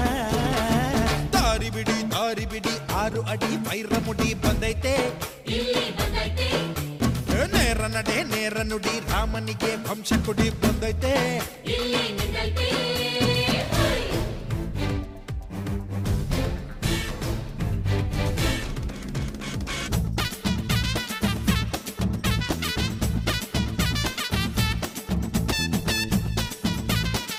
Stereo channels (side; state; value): both; identical; correlation 1.00